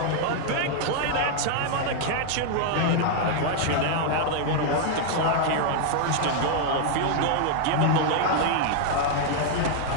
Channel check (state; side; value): different; both; correlation 0.00